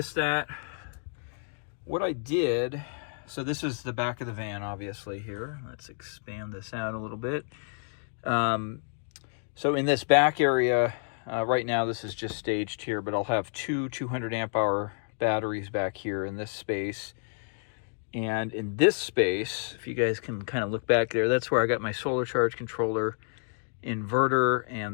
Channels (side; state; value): right; silent; 58 dB below the other